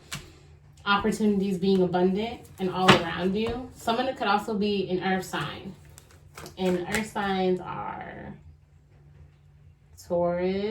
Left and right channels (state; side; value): identical; both; correlation 1.00